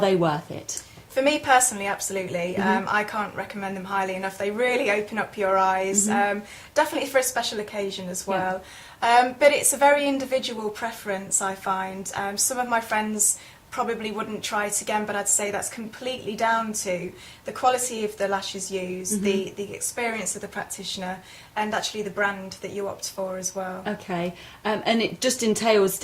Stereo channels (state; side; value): identical; both; correlation 1.00